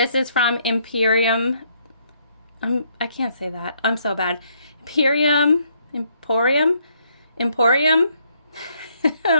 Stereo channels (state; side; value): inverted; both; correlation -0.70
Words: is from Imperium. I can't say that. I'm so bad. Emporium.